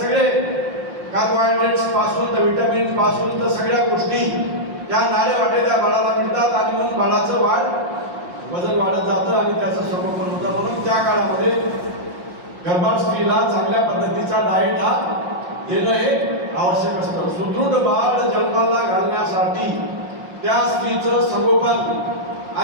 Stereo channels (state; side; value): late; left; 5.7 ms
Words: कार्बोहायड्रेट्स पासून तर विटामिन्स पासून तर सगळ्या गोष्टी त्या नाळे वाटे त्या बाळाला मिळतात आणि म्हणून बाळाचं वजन वाढत जातं आणि त्याचं संगोपन होतं. म्हणून त्या काळामध्ये गर्भार स्त्रीला चांगल्या पद्धतीचा डाएट हा देणं हे आवश्यक असतं. सुदृढ बाळ जन्माला घालण्यासाठी त्या स्त्रीचं संगोपन